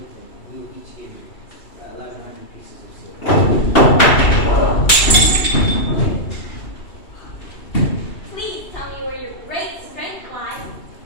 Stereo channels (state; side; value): late; right; 2.7 ms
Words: him. We will each give you 1,100 pieces of silver. Please tell me where your great strength lies,